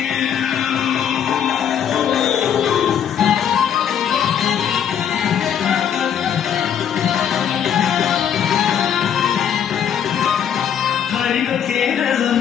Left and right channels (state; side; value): quieter; right; 8.8 dB